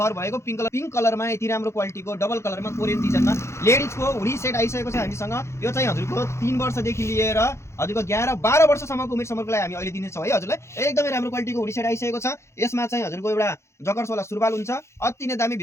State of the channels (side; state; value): right; late; 0.13 ms